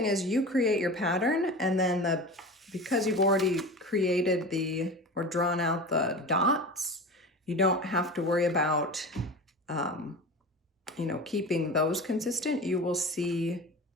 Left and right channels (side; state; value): both; normal; correlation 0.31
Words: is you create your pattern, and then because you've already created or drawn out the dots, you don't have to worry about you know, keeping those consistent, you will see